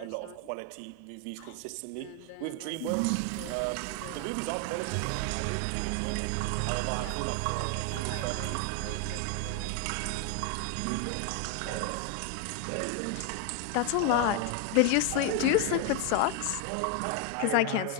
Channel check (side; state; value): both; different; correlation 0.01